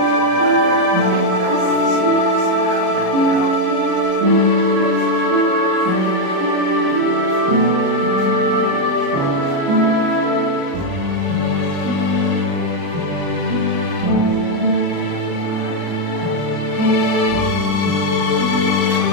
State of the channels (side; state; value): left; late; 35 ms